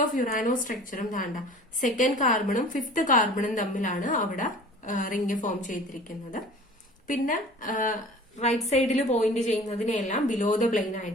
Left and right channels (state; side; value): normal; both; correlation 0.44